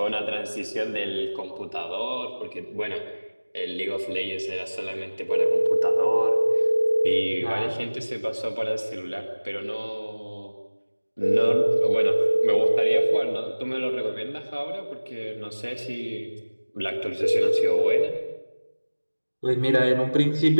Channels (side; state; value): both; inverted; correlation -1.00